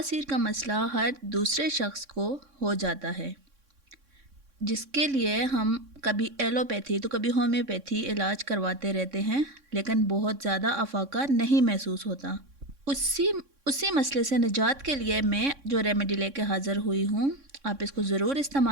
का मसला हर दूसरे शख्स को हो जाता है, जिसके लिए हम कभी एलोपैथी तो कभी होम्योपैथी इलाज करवाते रहते हैं, लेकिन बहुत ज़्यादा अफाका नहीं महसूस होता। उसी मसले से निजात के लिए मैं जो रेमेडी लेके हाज़िर हुई हूँ, आप इसको ज़रूर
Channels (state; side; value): late; left; 3.6 ms